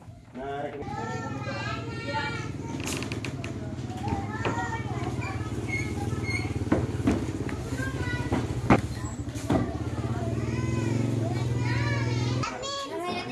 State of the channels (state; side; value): identical; both; correlation 1.00